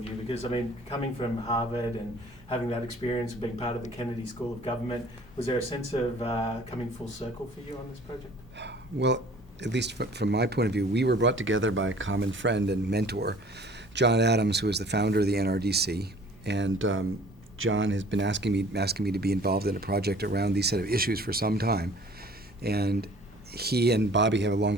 you? Because, I mean, coming from Harvard and having that experience of being part of the Kennedy School of Government, was there a sense of coming full circle for you on this project? Well, at least from my point of view, we were brought together by a common friend and mentor, John Adams, who is the founder of the NRDC, and John has been asking me to be involved in a project around these set of issues for some time, and he and Bobby have a long,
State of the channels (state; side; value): normal; both; correlation 0.51